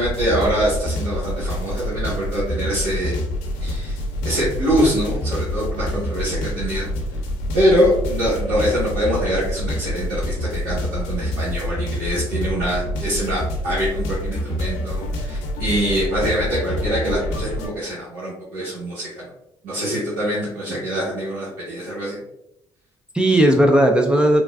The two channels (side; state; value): both; normal; correlation 0.64